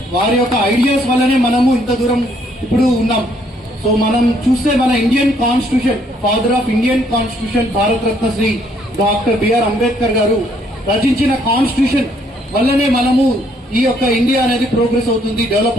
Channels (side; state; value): both; normal; correlation 0.67